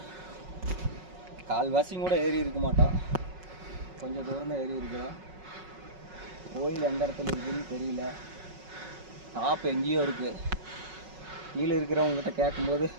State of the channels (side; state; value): left; late; 5.4 ms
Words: கால்வாசியும் கூட ஏறி இருக்க மாட்டோம், கொஞ்சம் தூரம் தான் ஏறி இருக்கிறோம். கோயில் எந்த இடத்துல இருக்குதுன்னு தெரியல, டாப் எங்கேயோ இருக்குது. கீழே இருக்கிறவங்ககிட்ட கேட்கும்போது